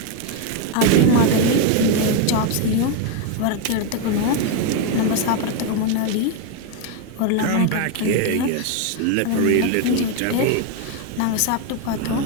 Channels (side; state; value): both; different; correlation 0.01